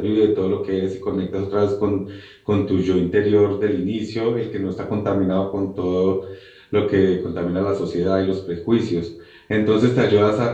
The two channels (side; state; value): both; identical; correlation 1.00